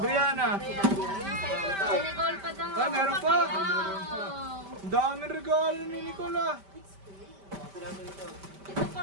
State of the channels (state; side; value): late; left; 5.1 ms